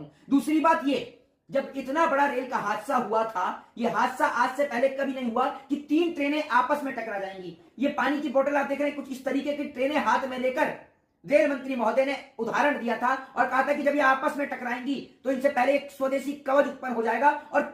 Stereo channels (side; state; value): both; identical; correlation 1.00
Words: दूसरी बात ये, जब इतना बड़ा रेल का हादसा हुआ था, ये हादसा आज से पहले कभी नहीं हुआ कि 3 ट्रेनें आपस में टकरा जाएंगी। ये पानी की बोतल आप देख रहे हैं, कुछ इस तरीके की ट्रेनें हाथ में लेकर रेल मंत्री महोदय ने उदाहरण दिया था और कहा था कि जब ये आपस में टकराएंगी तो इनसे पहले एक स्वदेशी कवच उत्पन्न हो जाएगा और